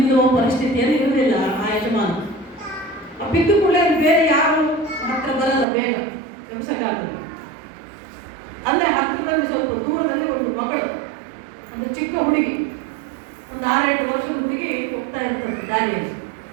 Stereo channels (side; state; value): left; drops out; at 5.7 s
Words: ಪರಿಸ್ಥಿತಿಯಲ್ಲಿ ಇರಲಿಲ್ಲ ಆ ಯಜಮಾನ. ಬಿದ್ದು ಕೂಡ ಬೇರೆ ಯಾರು ಹತ್ರ ಬರಲ್ಲ, ಬೇಗ ಎಬ್ಸಕ್ಕಾಗಲ್ಲ. ಅಂದ್ರೆ ಹತ್ತಿರದಲ್ಲಿ ಸ್ವಲ್ಪ ದೂರದಲ್ಲಿ ಒಂದು ಮಗಳು, ಒಂದು ಚಿಕ್ಕ ಹುಡುಗಿ, ಒಂದು 6-8 ವರ್ಷದ ಹುಡುಗಿ ಹೋಗ್ತಾ ಇರ್ತದೆ ದಾರಿಯಲ್ಲಿ.